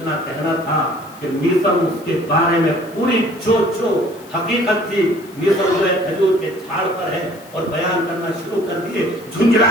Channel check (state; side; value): noise; left; hiss, 24 dB below the sound